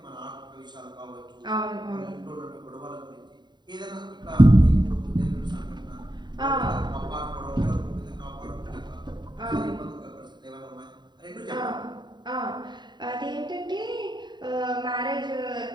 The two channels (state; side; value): late; left; 0.21 ms